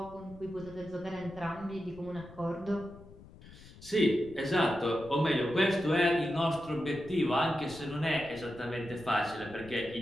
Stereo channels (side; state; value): left; noise; rumble, 19 dB below the sound